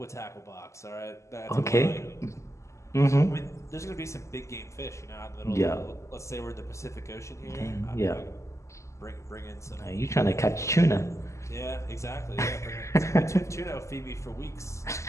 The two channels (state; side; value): late; right; 0.14 ms